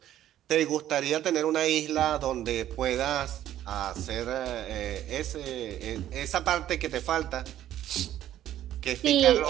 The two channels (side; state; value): left; quieter; 12.2 dB